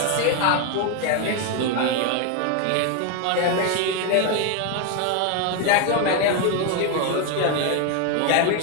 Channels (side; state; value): both; different; correlation 0.01